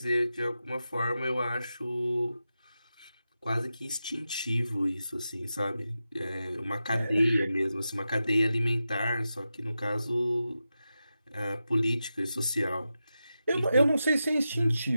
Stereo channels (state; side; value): inverted; both; correlation -0.91